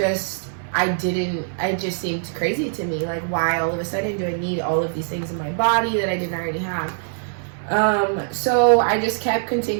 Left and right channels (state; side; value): silent; left; 60 dB below the other